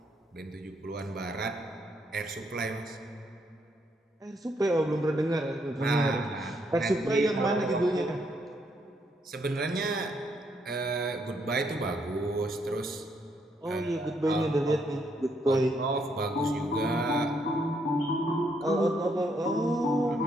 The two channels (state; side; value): normal; both; correlation 0.74